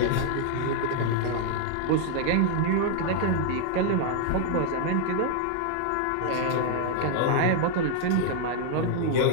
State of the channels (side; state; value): both; different; correlation 0.00